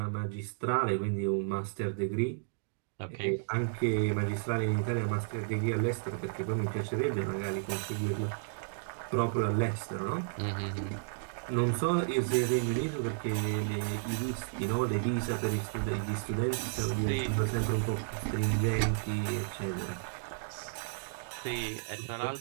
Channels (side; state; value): left; silent; digital silence